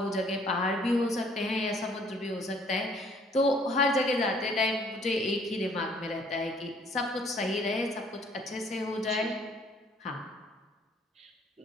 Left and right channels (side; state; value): both; normal; correlation 0.60